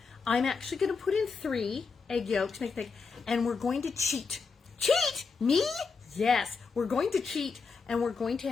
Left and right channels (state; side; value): quieter; right; 5.0 dB